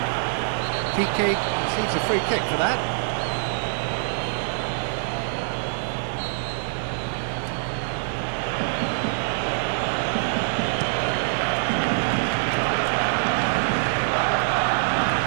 Piqué receives a free kick for that.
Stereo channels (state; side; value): silent; left; digital silence